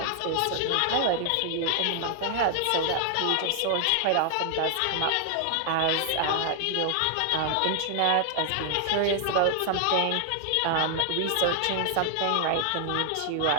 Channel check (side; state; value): both; different; correlation 0.00